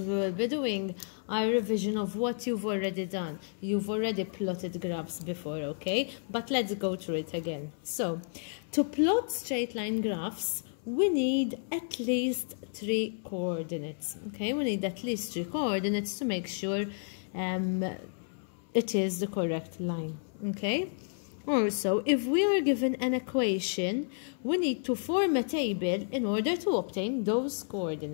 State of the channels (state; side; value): silent; right; 57 dB below the other